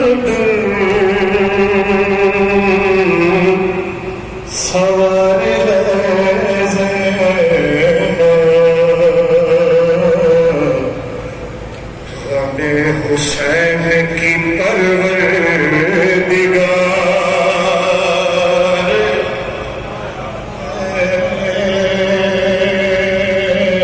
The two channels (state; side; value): identical; both; correlation 1.00